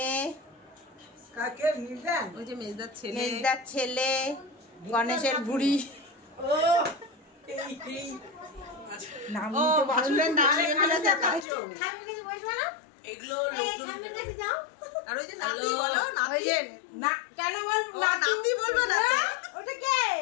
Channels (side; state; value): right; drops out; at 11.5 s